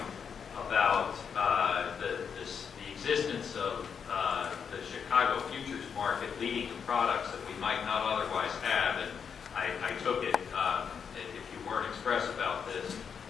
about the existence of the Chicago futures market leading to products that we might not otherwise have. And I took it, if you weren't express about this,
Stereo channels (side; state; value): right; quieter; 6.8 dB